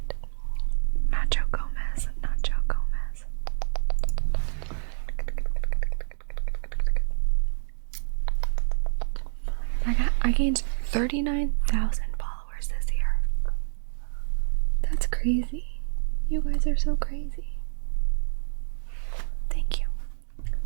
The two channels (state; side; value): silent; left; 60 dB below the other